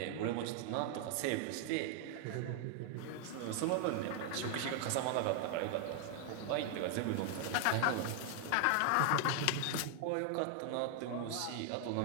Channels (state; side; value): different; both; correlation 0.00